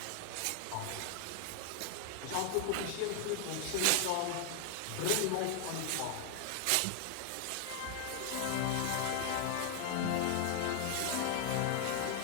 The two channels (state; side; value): different; both; correlation 0.00